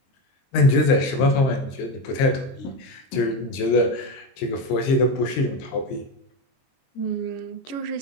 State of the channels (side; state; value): right; late; 23 ms